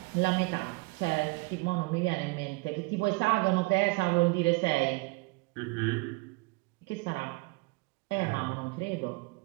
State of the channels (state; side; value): quieter; left; 26.4 dB